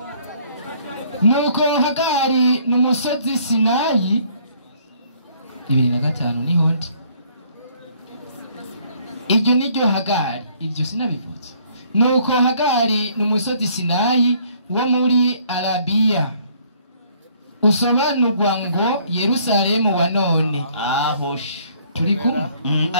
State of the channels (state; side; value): inverted; both; correlation -0.62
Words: nuko Hagari n'umusozi Sinayi 2005 niho ndi iryo niryo Hagari ibyo sinabivutse nuko Hagari n'umusozi Sinayi wo muri Arabiya usobanurwa ngo Yerusalemu wa none ahosh turi kumwe